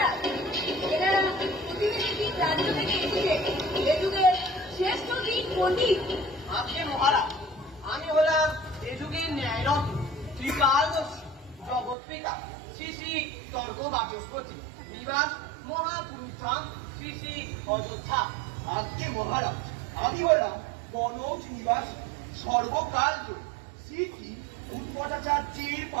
এনারা প্রতিনিধি রাজ্য থেকে এসেছে। ত্রিকালদর্শী জগৎ পিতা শ্রী শ্রী স্বর্গ বাচস্পতি নিবাস মহাপুরুষ ধাম শ্রী শ্রী অযোধ্যা। আজকে মহারাজ আমি হলাম কনৌজ নিবাস সর্বকার্য শ্রী শ্রী উৎপটাচার্যের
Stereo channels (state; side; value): drops out; left; at 12.0 s